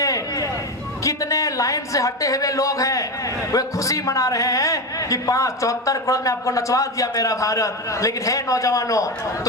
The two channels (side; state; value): both; normal; correlation 0.18